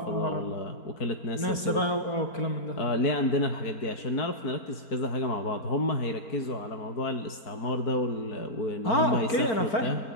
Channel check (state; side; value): late; right; 4.4 ms